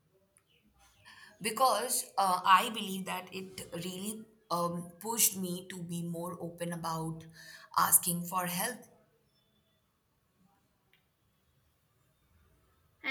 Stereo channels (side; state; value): both; identical; correlation 1.00